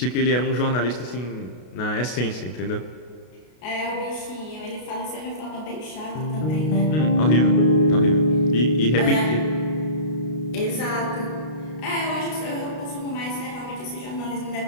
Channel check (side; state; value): right; late; 32 ms